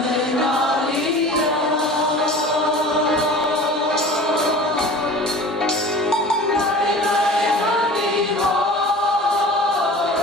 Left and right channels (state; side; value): normal; both; correlation 0.40